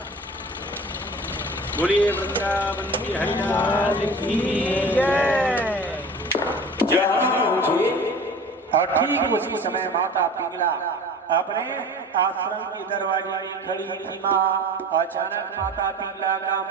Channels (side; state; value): both; normal; correlation 0.40